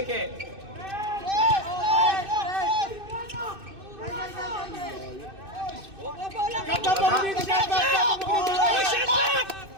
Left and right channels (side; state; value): left; late; 2.6 ms